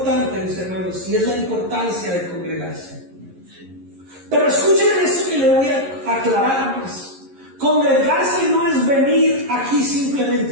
mis hermanos, y es la importancia de congregarse. Pero escuchen esto que le voy a aclarar más. Congregarse no es venir aquí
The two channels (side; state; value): left; late; 11 ms